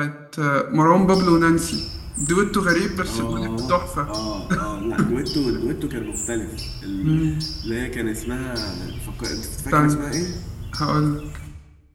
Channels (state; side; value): identical; both; correlation 1.00